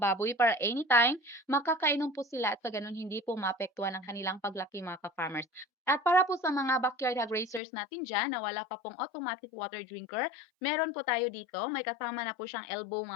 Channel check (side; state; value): right; drops out; at 7.6 s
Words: baboy para anytime makakainom po sila at sa ganun hindi po maapektuhan ang kanilang paglaki mga ka-farmers. At para po sa mga backyard hog racers natin dyan na wala pa pong automatic water drinker, meron po tayo dito. May kasama na po siyang elbow